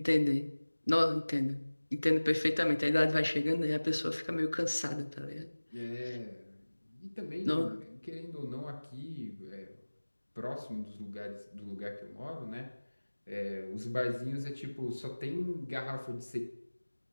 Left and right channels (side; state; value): both; inverted; correlation -1.00